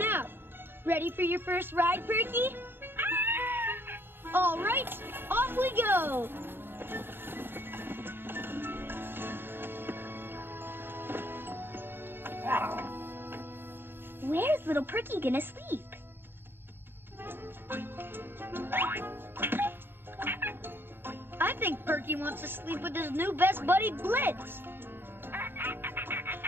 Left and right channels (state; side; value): late; left; 0.10 ms